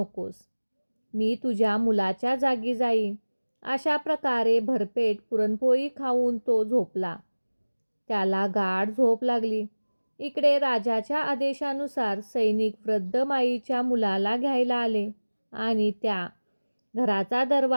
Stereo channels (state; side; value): inverted; both; correlation -1.00